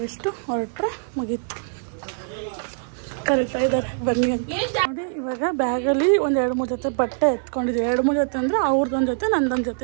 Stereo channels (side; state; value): left; silent; digital silence